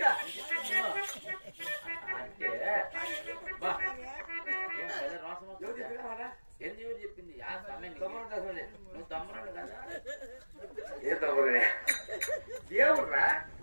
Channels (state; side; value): inverted; both; correlation -1.00